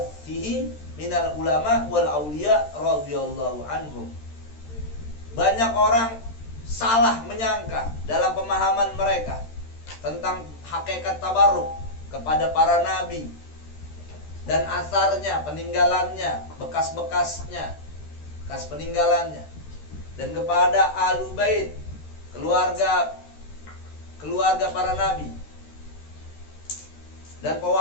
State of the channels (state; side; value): late; right; 13 ms